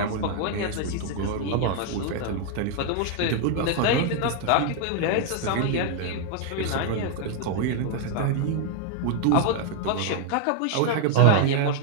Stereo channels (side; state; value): both; different; correlation 0.00